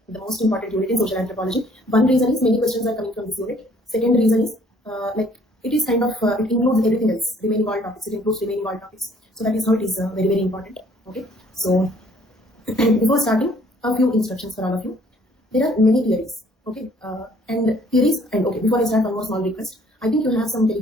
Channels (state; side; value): normal; both; correlation 0.60